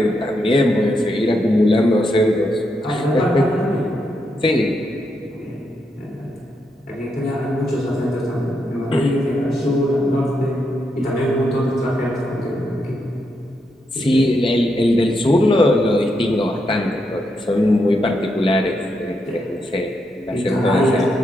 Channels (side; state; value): both; normal; correlation 0.81